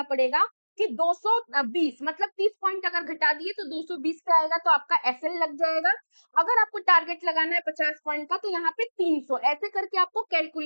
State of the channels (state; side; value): inverted; both; correlation -1.00